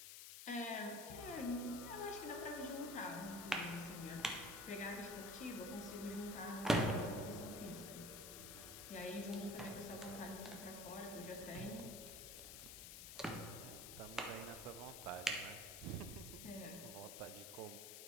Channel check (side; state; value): left; noise; hiss, 8 dB below the sound